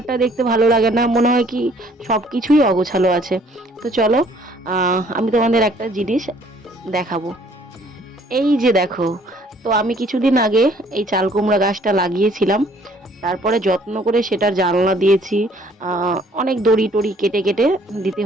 দেখতে ভালো লাগে না, মনে হয় কি সব কিছুই অগোছালো আছে। তো চলো, আমি তোমাদের একটা জিনিস দেখাবো। এই যে দেখো, তো আমি কিছুদিন আগে এই চাল কুমড়া গাছটা লাগিয়েছিলাম, তারপরে যত্ন করে সেটার জানলা দিয়েছি। অনেক দড়ি টড়ি কেটে কেটে দিতে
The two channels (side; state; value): both; normal; correlation 0.60